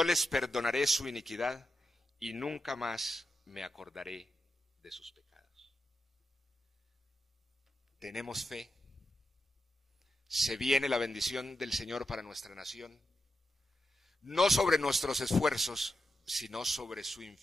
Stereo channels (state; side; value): normal; both; correlation 0.88